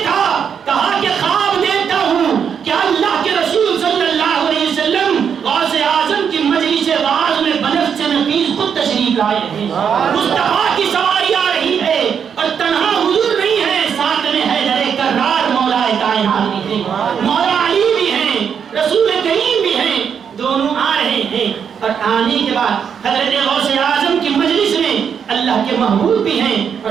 کہا کہ خواب دیکھتا ہوں کہ اللہ کے رسول صلی اللہ علیہ وسلم آنے کے بعد حضرت غوث اعظم کی مجلس میں اللہ کے محبوب بھی ہیں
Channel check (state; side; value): quieter; left; 7.4 dB